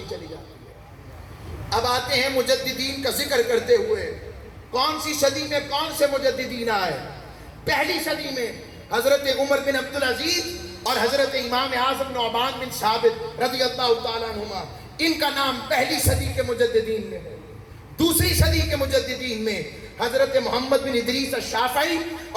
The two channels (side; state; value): both; identical; correlation 1.00